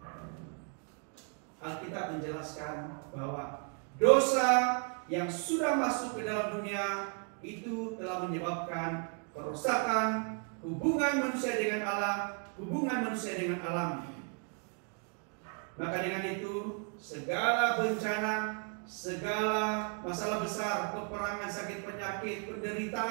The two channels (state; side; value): quieter; left; 39.6 dB